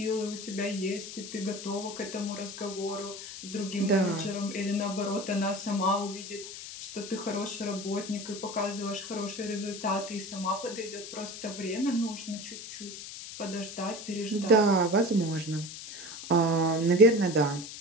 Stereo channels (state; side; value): noise; left; hiss, 11 dB below the sound